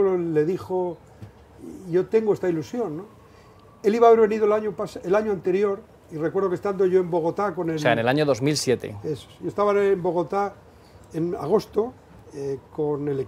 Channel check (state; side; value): identical; both; correlation 1.00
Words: le dijo, yo tengo esta ilusión, ¿no? Él iba a haber venido el año anterior, y recuerdo que estando yo en Bogotá con el... O sea, en el año 2007. Eso. Yo estaba en Bogotá en agosto con el